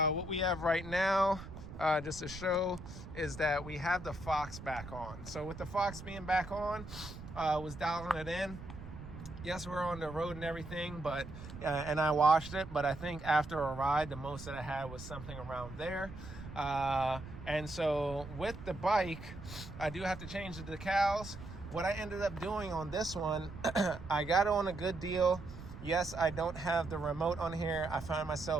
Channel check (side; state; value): right; noise; rumble, 12 dB below the sound